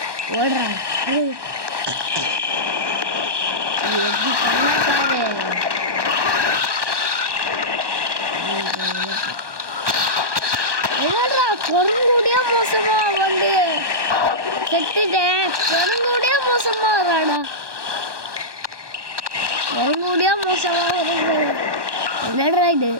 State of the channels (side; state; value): left; late; 1.2 ms